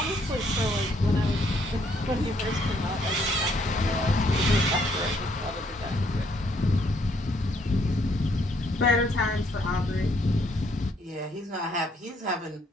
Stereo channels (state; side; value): normal; both; correlation 0.69